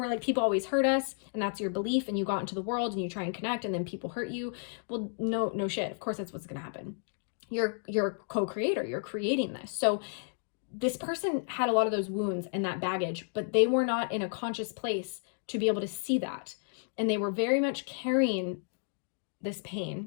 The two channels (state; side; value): silent; right; digital silence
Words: like, people always hurt us, and that's your belief, and you got into the world and you try and connect, and then people hurt you, well, no shit. Of course, that's what's going to happen. You're a co-creator. You're creating this. So this person had a lot of those wounds and that baggage, but they were not in a conscious place to be able to see that. And they were very much carrying this